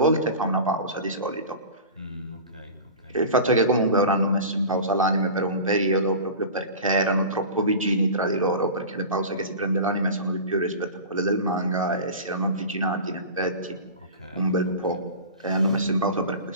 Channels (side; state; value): both; inverted; correlation -0.33